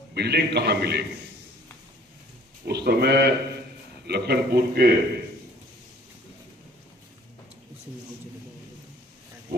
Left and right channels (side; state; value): both; normal; correlation 0.55